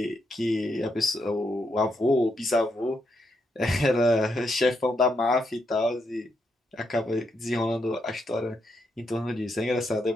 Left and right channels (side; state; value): both; normal; correlation 0.80